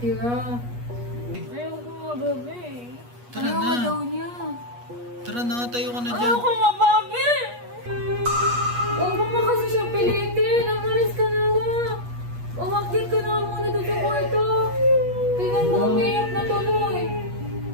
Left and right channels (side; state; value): left; late; 8.3 ms